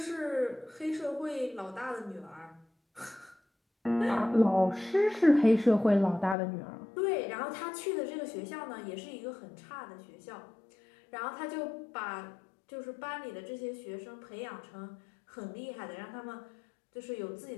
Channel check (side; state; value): right; drops out; at 6.4 s